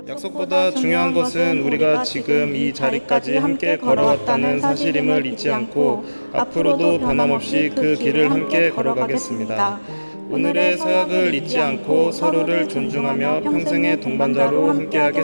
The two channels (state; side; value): inverted; both; correlation -1.00